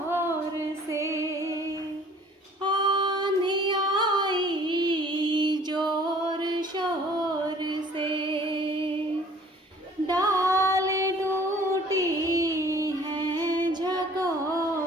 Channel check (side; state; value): both; normal; correlation 0.53